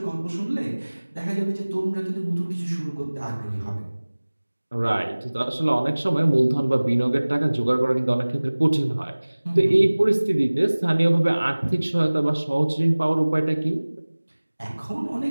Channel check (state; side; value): inverted; both; correlation -1.00